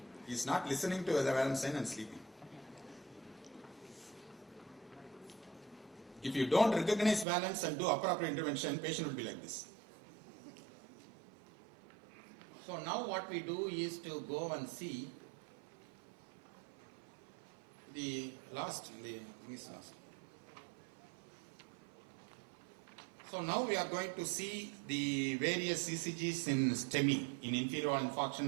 He is not listening to the valence sign and sleeping. If you don't recognize valence and do appropriate intervention, patient will be like this. So now what we do is to go and see the last. So now we are going to see the various ECGs in STEMI, in inferior wall infarction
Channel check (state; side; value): drops out; left; at 7.2 s